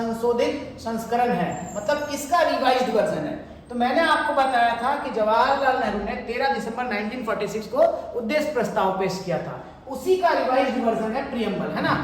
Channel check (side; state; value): both; identical; correlation 1.00